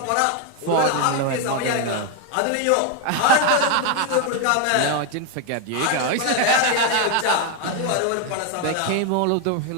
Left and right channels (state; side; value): different; both; correlation 0.01